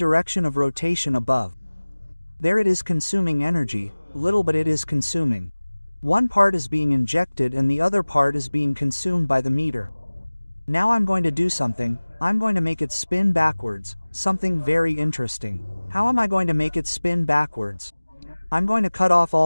of rotation above. There it is consuming energy, little but it is consuming. One part is being injected and the other part is being consumed by the meter. Now I'm going to do something. I'm going to make it spin backwards, something very interesting. How am I going to make it spin backwards? I'm going to cut off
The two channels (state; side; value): inverted; both; correlation -1.00